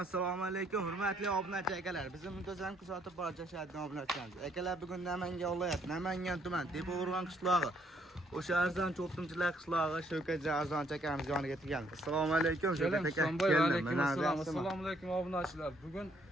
alaykum, hurmatli obunachi akalar. Bizni muntazam kuzatib borishadigan obunachilarimiz. Akalar bugun Namangan viloyat, Namangan tuman, Tepao'rg'on qishlog'i. O'sha arzon cho'qtimchilar qishlog'i Shavkat Arzon akamiz yoniga kelganmiz. Assalomu alaykum Shavkat aka. Assalomu alaykum obunachilar. Bugun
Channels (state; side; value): normal; both; correlation 0.68